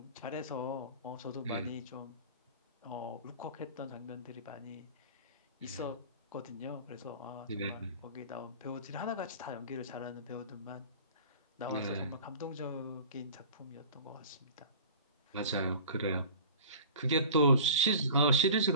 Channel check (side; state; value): both; inverted; correlation -0.40